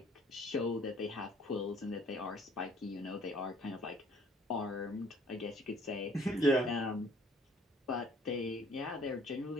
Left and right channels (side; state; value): both; normal; correlation 0.57